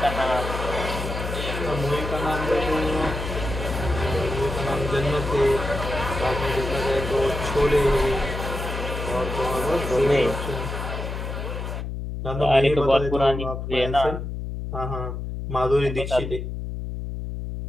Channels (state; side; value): noise; left; hum, 5 dB below the sound